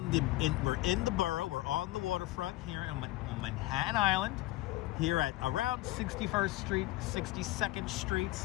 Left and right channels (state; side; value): quieter; right; 18.0 dB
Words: in the borough. We're on the waterfront here on Manhattan Island, here at around 61st Street, 62nd Street.